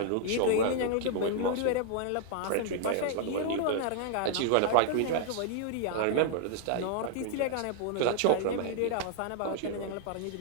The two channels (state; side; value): different; both; correlation -0.01